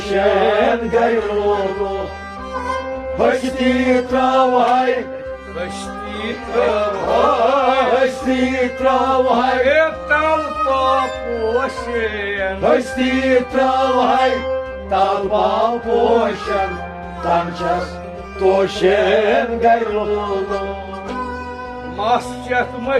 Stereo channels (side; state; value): both; identical; correlation 1.00